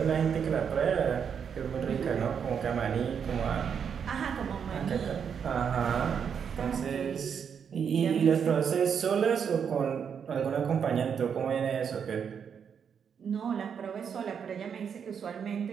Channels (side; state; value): left; quieter; 7.3 dB